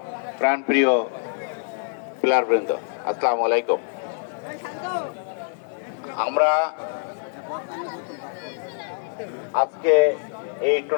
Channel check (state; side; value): silent; right; digital silence